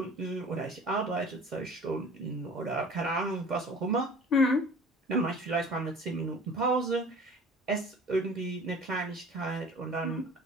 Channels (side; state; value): both; normal; correlation 0.45